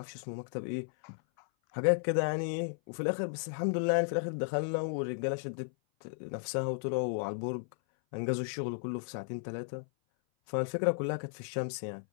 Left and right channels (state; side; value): silent; right; 55 dB below the other